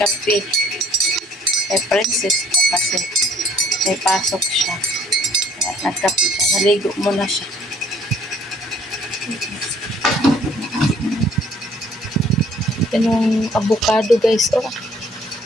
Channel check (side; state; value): both; normal; correlation 0.59